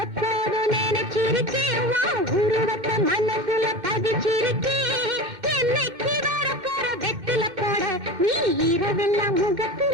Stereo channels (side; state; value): left; late; 2.1 ms